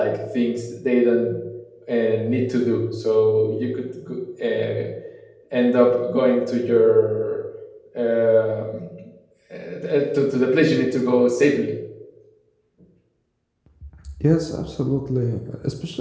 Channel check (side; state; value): both; identical; correlation 1.00